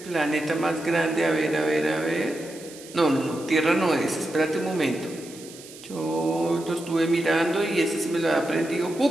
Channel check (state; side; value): noise; right; hiss, 18 dB below the sound